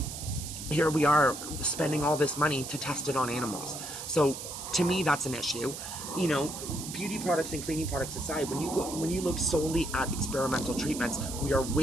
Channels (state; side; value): noise; right; hiss, 8 dB below the sound